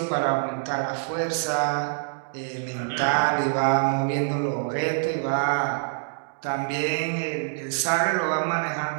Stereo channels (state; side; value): silent; left; digital silence